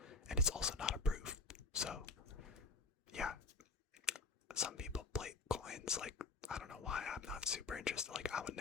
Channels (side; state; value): right; quieter; 3.8 dB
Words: And it's also not approved. So, yeah. Some people plate coins, like, I don't know why, I'm not super interested. Like, I would